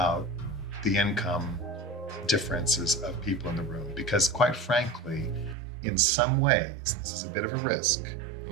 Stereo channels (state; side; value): drops out; left; at 5.6 s